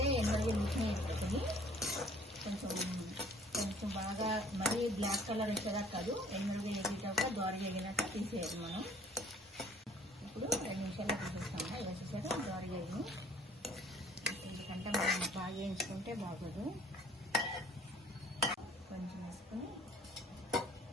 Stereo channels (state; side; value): normal; both; correlation 0.55